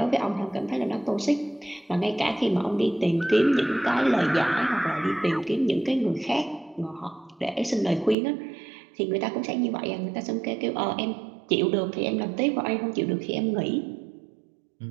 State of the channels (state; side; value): drops out; left; at 8.2 s